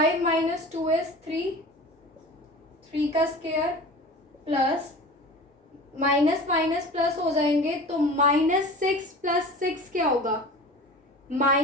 माइनस 2 इज 3 का square plus minus minus plus हो जाएंगे, तो -6 प्लस 6 क्या होगा?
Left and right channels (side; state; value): both; normal; correlation 0.38